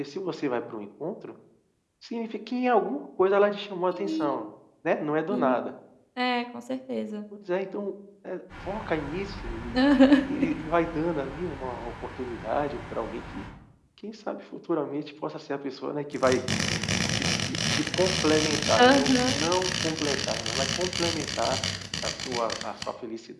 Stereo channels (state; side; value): identical; both; correlation 1.00